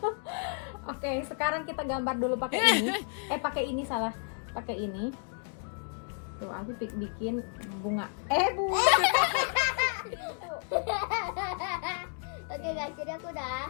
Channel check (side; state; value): right; silent; 57 dB below the other